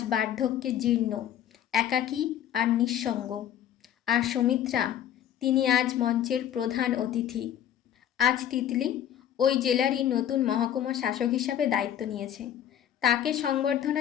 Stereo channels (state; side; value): quieter; right; 10.4 dB